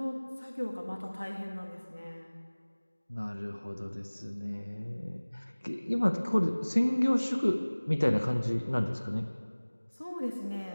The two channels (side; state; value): both; inverted; correlation -1.00